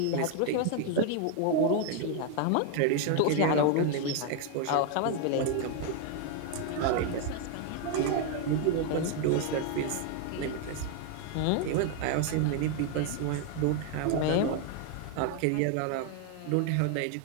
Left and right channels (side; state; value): both; different; correlation 0.01